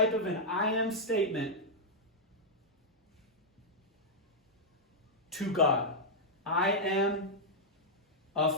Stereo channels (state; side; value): normal; both; correlation -0.06